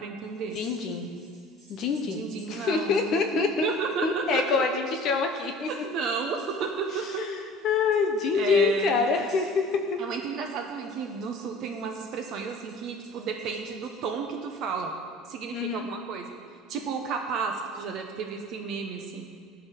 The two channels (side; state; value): both; normal; correlation 0.44